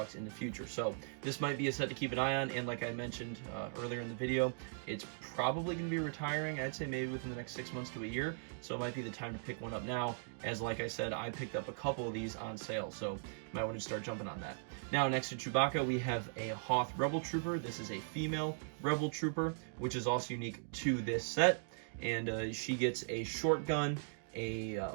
in the future. So this might be a set to keep an eye on, and like I mentioned earlier in the video, it's probably going to be retiring, I'd say maybe within the next 6 months to a year, so it might be the time to pick one up now, as like I said, I picked up a couple of these on sale, so you might want to start jumping on that. Now, next to Chewbacca, we have a Hoth Rebel Trooper. This is a female Rebel Trooper, which is also unique to this set, and she gets a short gun, a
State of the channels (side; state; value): left; silent; digital silence